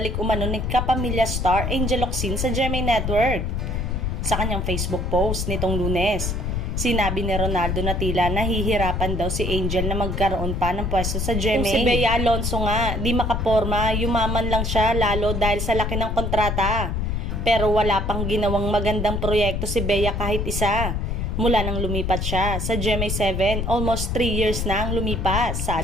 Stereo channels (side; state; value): left; noise; rumble, 1 dB below the sound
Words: umano ni kapamilya star Angel Locsin sa GMA Network. Sa kanyang Facebook post nitong Lunes, sinabi ni Ronaldo na tila nahihirapan daw si Angel na magkaroon pa ng pwesto sa GMA. Kung si Bea Alonzo nga, di makaporma, yumaman lang siya lalo dahil sa laki ng kontrata. Pero wala pang ginawang magandang proyekto si Bea kahit isa. Mula nang lumipat siya sa GMA7, almost 3 years na ang lumipas,